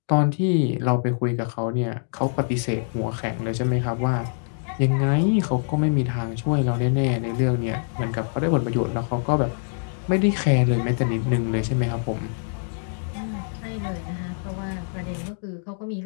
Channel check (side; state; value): right; silent; digital silence